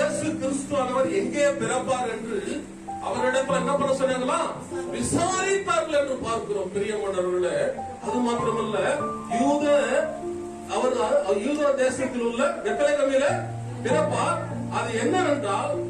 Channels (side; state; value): both; identical; correlation 1.00